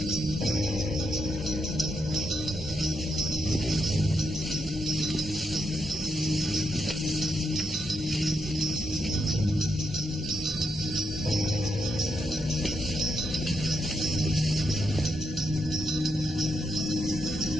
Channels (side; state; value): both; normal; correlation 0.80